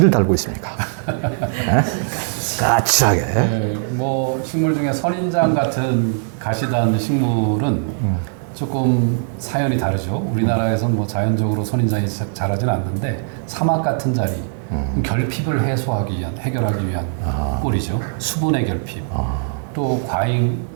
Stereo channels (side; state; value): left; silent; digital silence